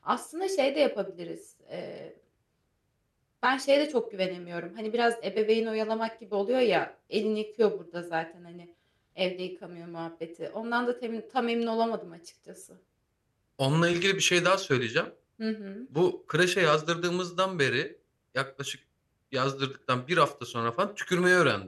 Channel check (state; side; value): identical; both; correlation 1.00